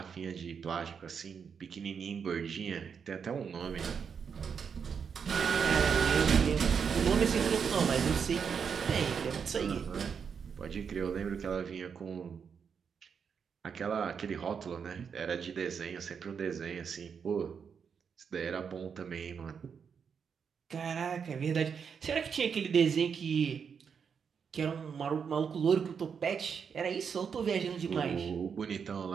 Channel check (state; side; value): quieter; left; 6.6 dB